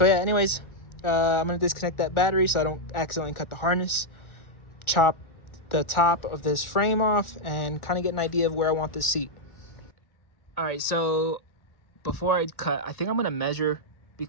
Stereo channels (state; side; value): late; right; 1.4 ms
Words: yeah, anyways, I'm going to disconnect that battery so I don't accidentally cut the harness. Chop the top of this frame off and kind of get an idea of where I want this seat. All right, so before I cut, I think I'm going to measure,